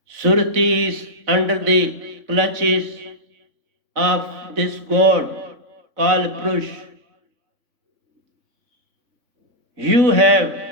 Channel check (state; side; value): late; left; 3.6 ms